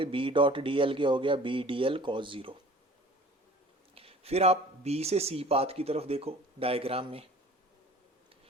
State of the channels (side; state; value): both; normal; correlation 0.47